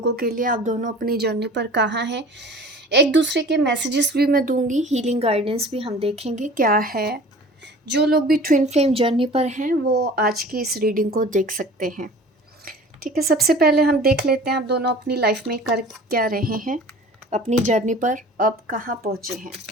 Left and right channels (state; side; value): normal; both; correlation 0.43